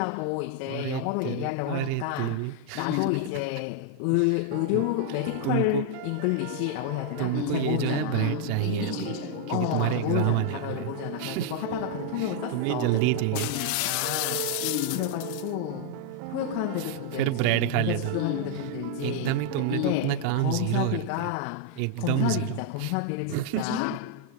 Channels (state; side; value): different; both; correlation 0.00